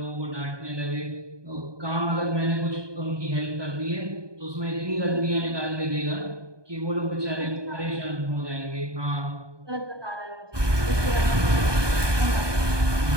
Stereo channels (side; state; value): left; late; 1.2 ms